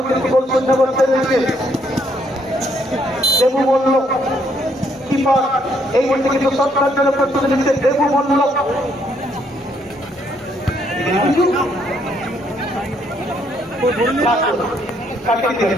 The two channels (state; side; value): normal; both; correlation 0.70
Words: কিন্তু গোল শূন্য করতে রয়েছে দেবু বলল কিপার এই মুহূর্তে কিন্তু সরকার জন্য প্রস্তুতি নিচ্ছে দেবু বলল